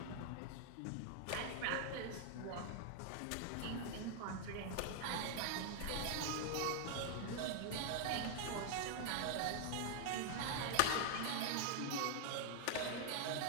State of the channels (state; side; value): different; both; correlation 0.00